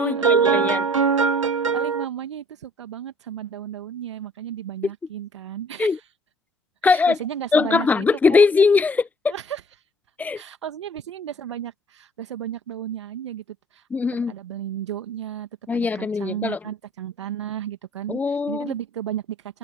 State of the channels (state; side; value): normal; both; correlation 0.55